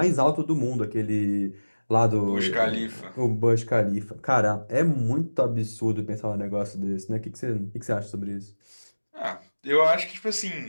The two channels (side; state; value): both; inverted; correlation -1.00